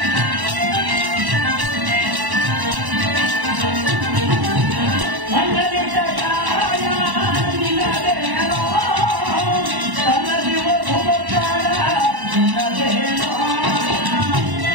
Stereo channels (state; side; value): late; left; 1.1 ms